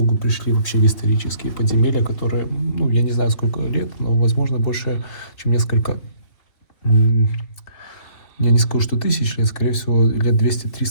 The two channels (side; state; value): right; late; 3.4 ms